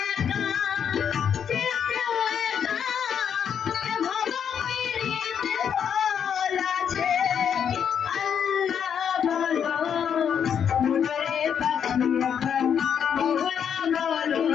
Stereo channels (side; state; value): right; quieter; 8.0 dB